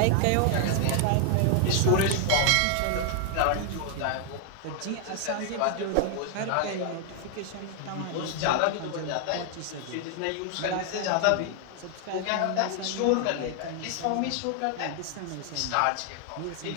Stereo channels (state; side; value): different; both; correlation 0.00